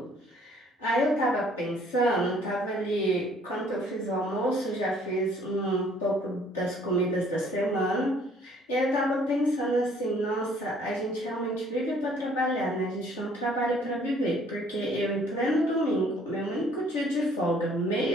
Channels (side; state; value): both; normal; correlation 0.59